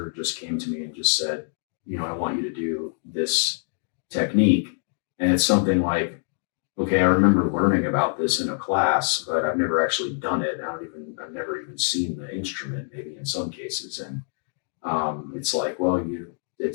just came to me and just said, I want you to do this technique. And it's something like, okay, I remember learning about this in a class, but I've never actually done it. I've never even seen the instrument, maybe in some cases. And it's like, well,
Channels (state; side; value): silent; right; 59 dB below the other